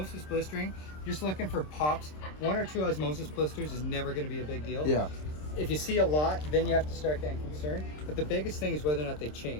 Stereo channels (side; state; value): right; late; 26 ms